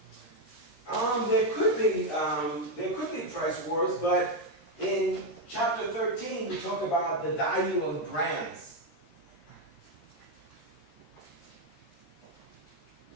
There could be price wars, but in chapter 13 we talk about the value of brands.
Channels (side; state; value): right; late; 13 ms